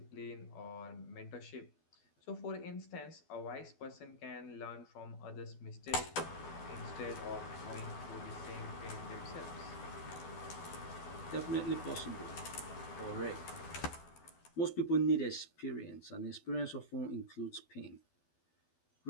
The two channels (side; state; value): right; late; 12 ms